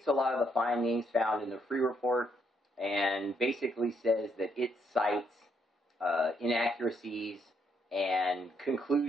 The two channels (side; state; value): both; normal; correlation 0.74